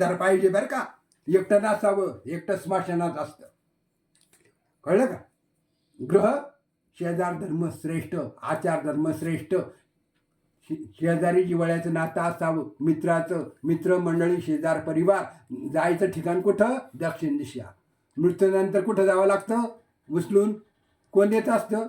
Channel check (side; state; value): both; identical; correlation 1.00